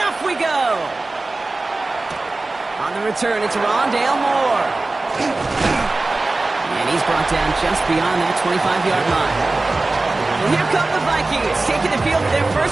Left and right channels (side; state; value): left; quieter; 3.2 dB